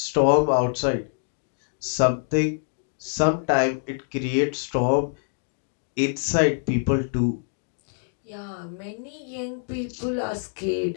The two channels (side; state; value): right; silent; 61 dB below the other